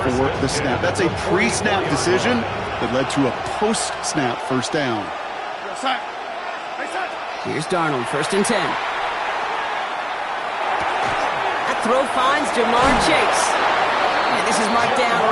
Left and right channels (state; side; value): identical; both; correlation 1.00